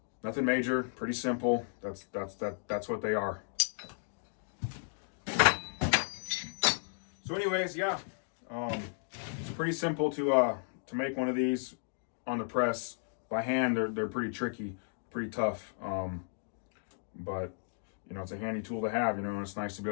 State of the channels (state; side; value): silent; right; digital silence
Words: nothing major, pretty simple. That's what they are. So anyways, yeah, it's pretty simple to make one of these on the press. By hand, they're pretty tricky, pretty tough. But it's a handy tool to have, and it's nice to be